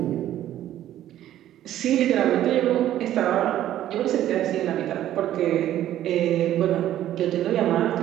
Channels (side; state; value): left; quieter; 12.5 dB